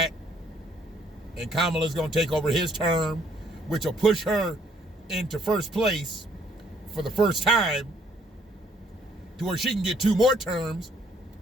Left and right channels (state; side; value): normal; both; correlation 0.65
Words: and Kamala's going to take over his term, which will push her into first place for the first time to where she can get 2 more terms